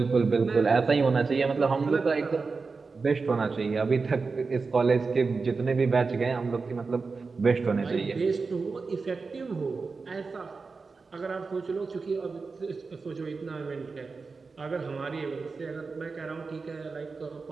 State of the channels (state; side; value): quieter; left; 4.4 dB